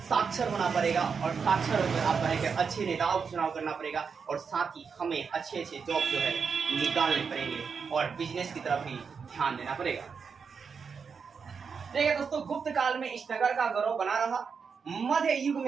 साक्षर होना पड़ेगा और साक्षर होकर आपका है कि अच्छे नेताओं को चुनाव करना पड़ेगा। और साथ ही हमें अच्छे जॉब जो है निकालने पड़ेंगे और बिजनेस की तरफ ही ध्यान देना पड़ेगा। देखिए दोस्तों, गुप्त काल में इस नगर का गौरव बना रहा। मध्य युग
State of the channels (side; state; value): left; quieter; 5.8 dB